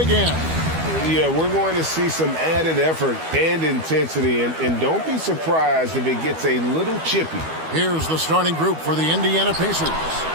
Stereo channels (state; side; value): late; left; 12 ms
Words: Yeah, we're going to see some added effort and intensity, and don't be surprised if it gets a little chippy. Here's the starting group for the Indiana Pacers.